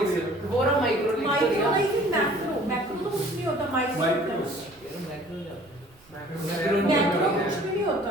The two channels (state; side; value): noise; right; rumble, 30 dB below the sound